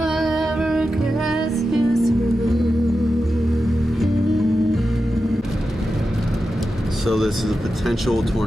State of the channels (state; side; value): normal; both; correlation 0.91